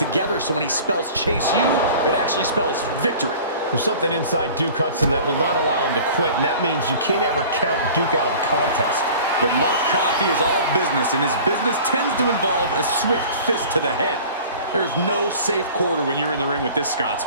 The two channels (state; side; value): inverted; both; correlation -0.43